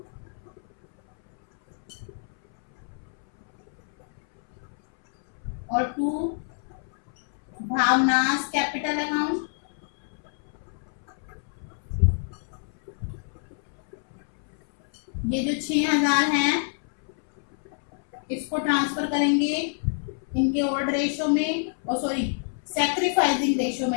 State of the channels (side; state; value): right; silent; 60 dB below the other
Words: और टू भावनास कैपिटल अकाउंट। ये जो 6,000 है इसको ट्रांसफर करेंगे इनके ओल्ड रेशो में, और सॉरी सैक्रिफाइसिंग रेशो